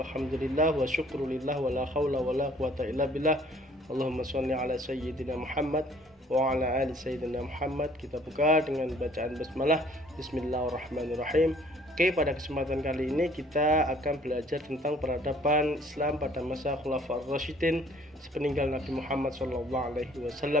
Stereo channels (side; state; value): both; normal; correlation 0.57